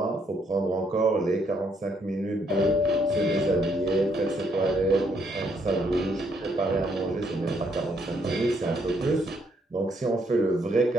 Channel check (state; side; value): normal; both; correlation 0.71